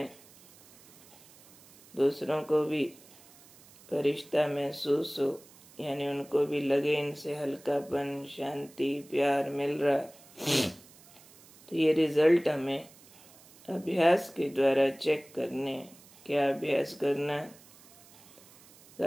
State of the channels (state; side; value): noise; right; hiss, 24 dB below the sound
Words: दूसरों को भी फरिश्ता महसूस हो, यानी उनको भी लगे इनसे हल्कापन, शांति, प्यार मिल रहा। तो ये रिजल्ट हमें अभ्यास के द्वारा चेक करने। क्या अभ्यास करना?